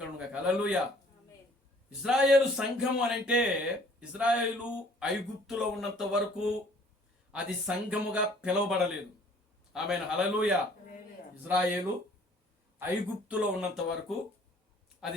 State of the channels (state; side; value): normal; both; correlation 0.56